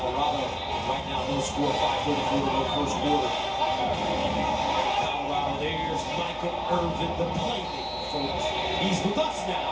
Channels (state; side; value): identical; both; correlation 1.00